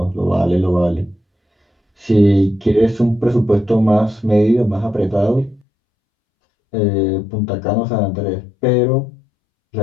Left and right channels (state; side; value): drops out; right; at 5.6 s